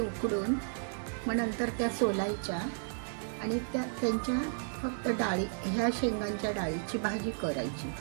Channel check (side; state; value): left; silent; digital silence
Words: मग नंतर त्या सोलायच्या आणि त्यांच्या फक्त डाळी, ह्या शेंगांच्या डाळीची भाजी करायची.